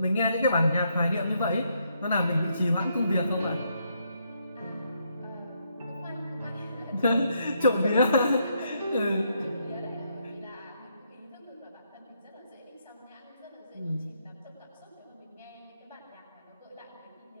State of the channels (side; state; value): both; inverted; correlation -0.75